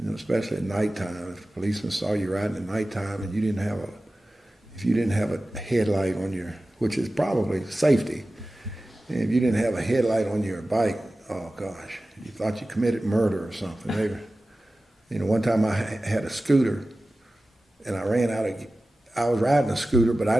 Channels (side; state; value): both; normal; correlation 0.96